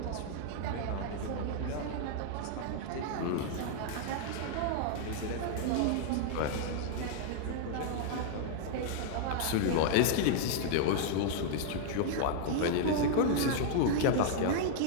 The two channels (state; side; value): different; both; correlation -0.01